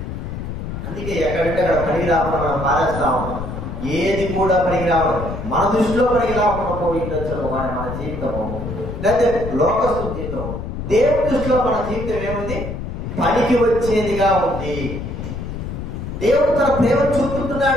అందుకే ఎక్కడంటే అక్కడ పనికి రాకుండా మనం పారేస్తా ఉంటాం. ఏది కూడా పనికి రావడం, మన దృష్టిలో పనికి రాకుండా పోయిండొచ్చు కానీ మన జీవితము, లేకపోతే లోకస్తు జీవితం. దేవుడి దృష్టిలో మన జీవితం ఏముంది? పనికి వచ్చేదిగా ఉంది. దేవుడు తన ప్రేమ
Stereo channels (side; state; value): left; noise; rumble, 6 dB below the sound